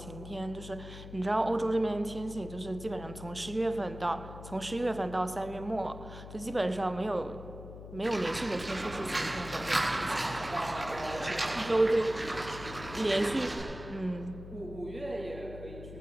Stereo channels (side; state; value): left; noise; hum, 12 dB below the sound